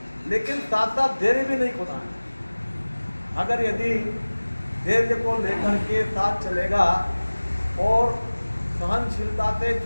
लेकिन साथ साथ धैर्य भी नहीं खोना है। अगर यदि धैर्य को लेकर के साथ चलेगा और सहनशीलता से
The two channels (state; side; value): inverted; both; correlation -1.00